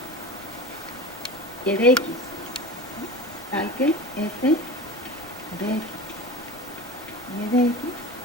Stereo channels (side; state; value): left; noise; rumble, 24 dB below the sound